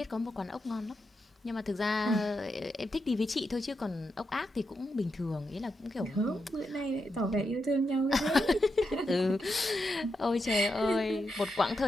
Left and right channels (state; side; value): normal; both; correlation 0.85